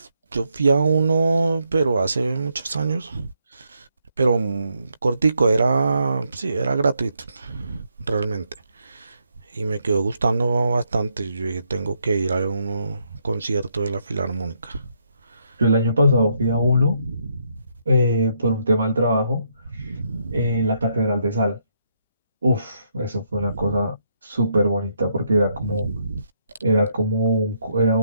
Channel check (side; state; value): both; inverted; correlation -0.76